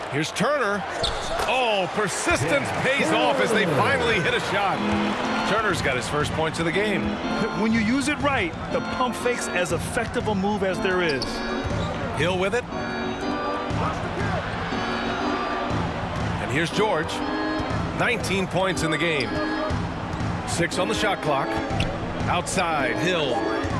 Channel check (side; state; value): both; identical; correlation 1.00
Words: Here's Turner. Oh, persistence pays off as they finally hit a shot. Turner's got his first points of the game. When you use it right, the pump fake's as effective a move as there is. Hill with it. And here's George. 19 points in the game. 6 on the shot clock. Outside, Hill.